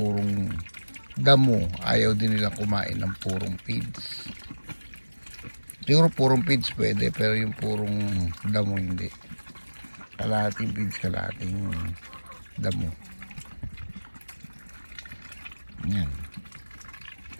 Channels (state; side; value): inverted; both; correlation -1.00